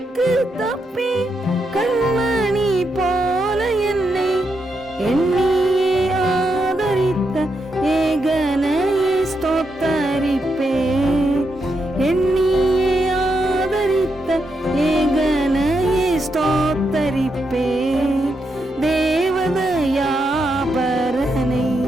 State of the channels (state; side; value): normal; both; correlation 0.82